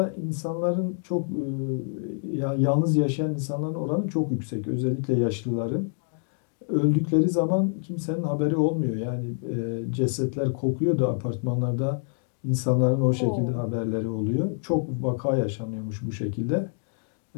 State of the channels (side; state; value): right; silent; 60 dB below the other